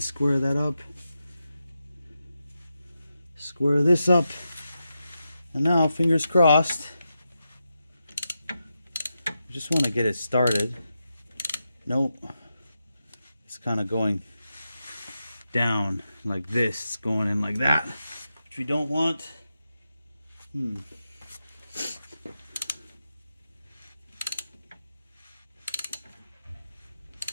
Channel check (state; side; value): inverted; both; correlation -0.88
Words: square that up. Square this up. And now, fingers crossed. I just want to get it started. Nope. It's kind of going down like this. It's going in like that, which we don't want.